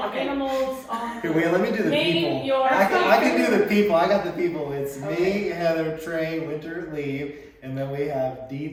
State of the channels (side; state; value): both; identical; correlation 1.00